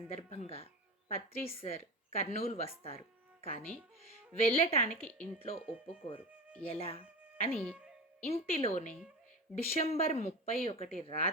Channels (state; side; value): normal; both; correlation 0.27